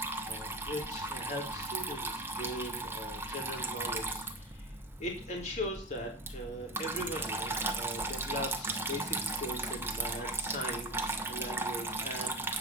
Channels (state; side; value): normal; both; correlation 0.25